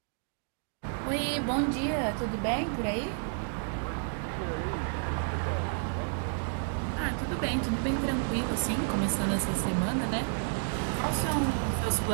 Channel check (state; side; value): silent; left; digital silence